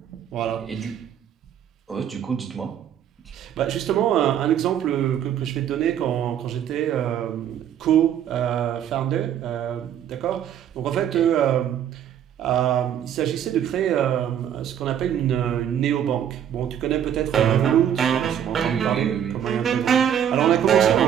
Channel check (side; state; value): left; quieter; 9.6 dB